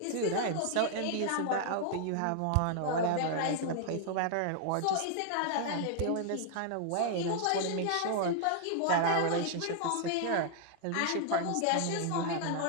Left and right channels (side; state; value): both; different; correlation 0.00